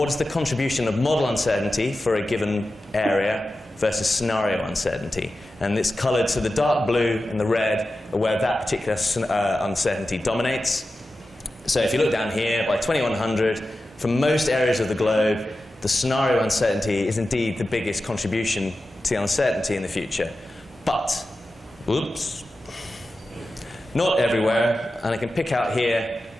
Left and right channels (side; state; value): both; normal; correlation 0.93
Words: is the contribution of model uncertainty for a given area versus scenario uncertainty? And it's colored, so the dark blue and the red are where that particular uncertainty dominates. So if you look down here, by 2100, for most areas of the globe, the scenario uncertainty is indeed the biggest contribution to the uncertainty in the future. But, oops, not everywhere. And I can pick out here